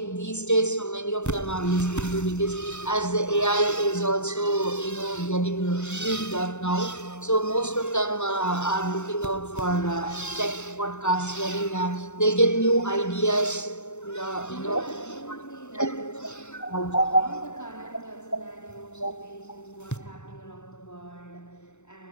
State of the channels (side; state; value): right; late; 0.83 ms